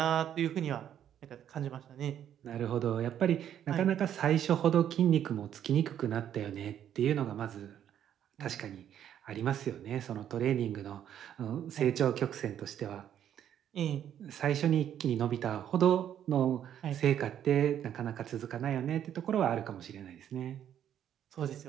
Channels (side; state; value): left; quieter; 10.1 dB